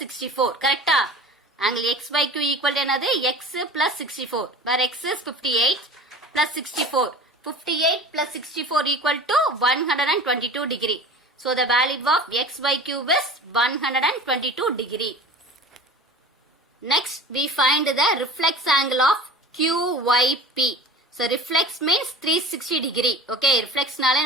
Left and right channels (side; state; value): both; normal; correlation 0.38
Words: 64. கரெக்டா? angle XYQ equal to என்னது? X plus 64. where X is 58 plus 64. 58 plus 64 equal to 122 degree. so the value of XYQ is 122 degree. Next we find the reflex angle of QYP. so reflex means 360 degree. okay. reflex நாலே